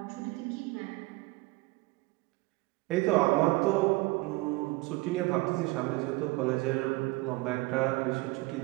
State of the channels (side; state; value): left; quieter; 23.1 dB